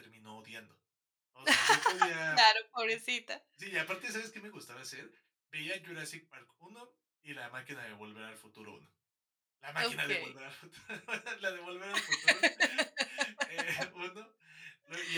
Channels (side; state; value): both; identical; correlation 1.00